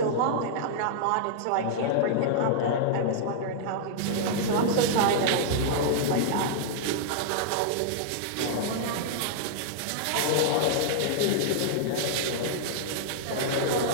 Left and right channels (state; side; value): different; both; correlation -0.01